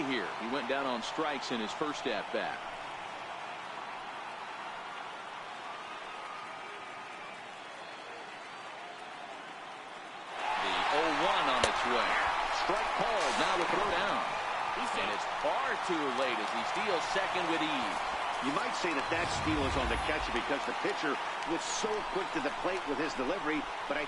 here. He went down on strikes in his first at-bat. The 0-1 on its way. Strike called. Now the throw down. And it's far too late as he steals second with ease. You might say that that steal is on the catcher because the pitcher was so quick to the plate with his delivery, but I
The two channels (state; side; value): identical; both; correlation 1.00